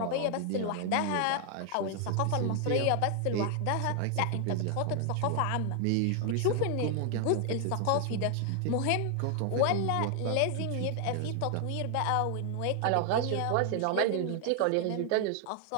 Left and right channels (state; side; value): different; both; correlation 0.00